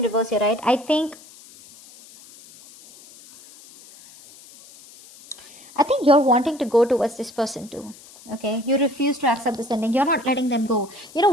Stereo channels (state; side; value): noise; left; hiss, 22 dB below the sound